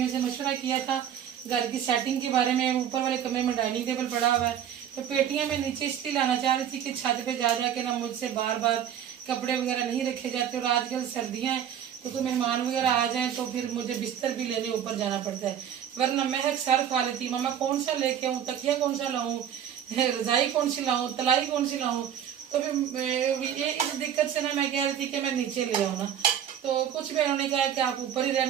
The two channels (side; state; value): left; quieter; 9.4 dB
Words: से मशवरा किया था घर की सेटिंग के बारे में। ऊपर वाले कमरे में डाइनिंग टेबल पड़ा हुआ है, तो पेटियां मैं नीचे इसलिए लाना चाह रही थी कि छत पे जा जा के ना मुझसे बार बार कपड़े वगैरह नहीं रखे जाते, और आजकल सर्दियां हैं तो कोई मेहमान वगैरह आ जाए तो फिर मुझे बिस्तर भी लेने ऊपर जाना पड़ता है, वरना महक सर खा लेती, मामा कौन सा लेके आऊँ, तकिया कौन सा लाऊं, रजाई कौन सी लाऊं, तलाई कौन सी लाऊं। तो फिर ये इस दिक्कत से ना मैं कह रही थी कि मैं नीचे ले आऊँ ना, तो कुछ बहनों ने कहा कि आप ऊपर ही